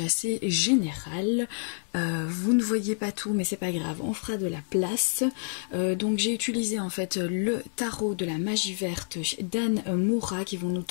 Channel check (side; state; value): right; silent; 59 dB below the other